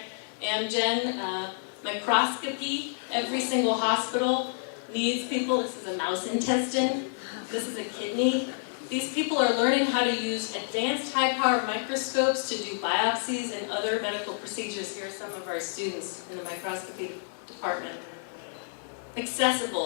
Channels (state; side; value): silent; right; 59 dB below the other